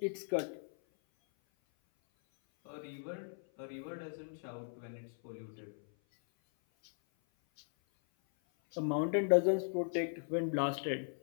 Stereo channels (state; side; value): silent; right; 53 dB below the other